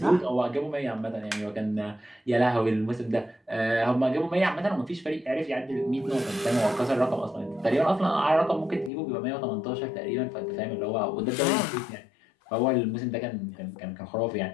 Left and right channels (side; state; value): right; drops out; at 8.9 s